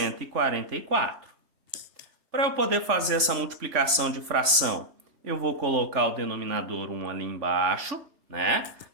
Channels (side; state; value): left; late; 3.5 ms